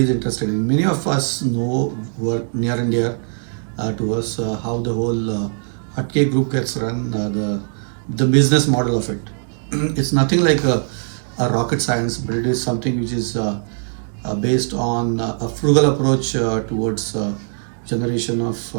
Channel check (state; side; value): silent; left; digital silence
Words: is interested in. Many of us know, who are near and dear to us, how the whole HATKE Group gets run, the business model of it. It's nothing like a rocket science, but it is something which is based on a frugal approach towards generation of